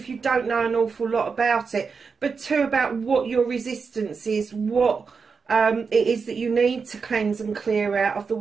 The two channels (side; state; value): left; quieter; 5.3 dB